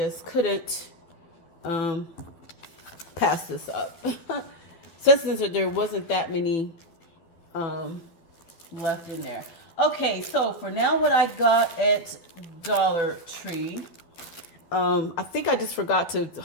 couldn't pass this up. since there wasn't that many left in there. Okay, so for now, what I got at Dollar Tree, I think I just forgot to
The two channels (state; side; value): late; right; 12 ms